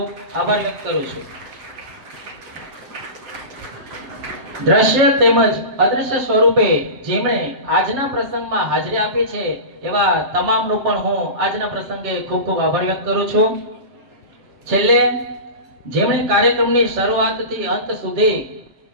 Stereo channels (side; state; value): left; late; 7.3 ms